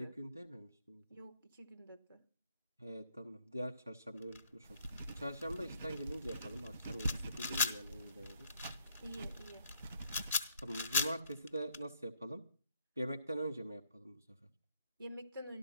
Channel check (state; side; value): inverted; both; correlation -0.69